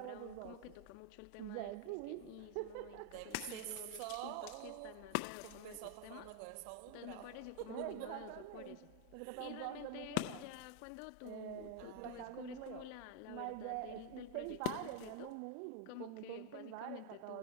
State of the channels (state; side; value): different; both; correlation 0.00